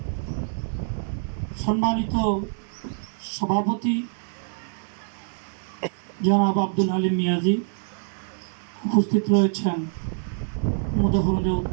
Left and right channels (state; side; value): silent; left; 61 dB below the other